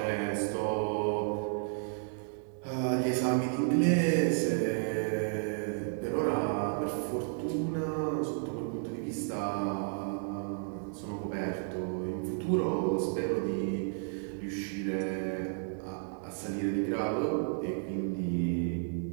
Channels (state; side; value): silent; left; 56 dB below the other